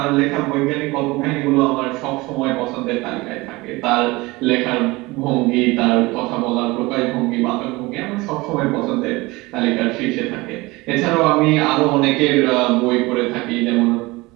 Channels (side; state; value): left; quieter; 22.2 dB